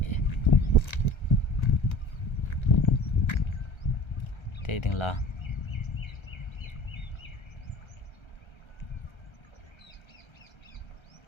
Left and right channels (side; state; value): right; late; 1.3 ms